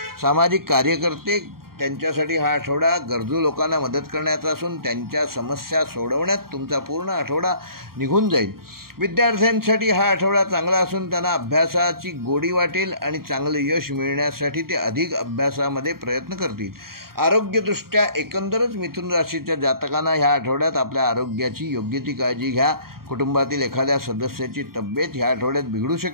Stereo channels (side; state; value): left; late; 0.93 ms